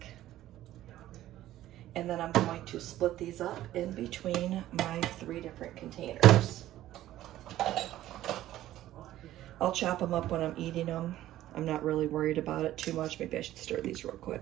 And then I'm going to split these up in between my 3 different containers. I'll chop them up when I'm eating them. I'm not really worried about it too much. Maybe I should stir these real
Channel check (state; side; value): quieter; left; 13.9 dB